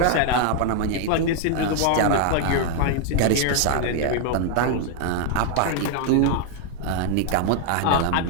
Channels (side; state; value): both; different; correlation 0.00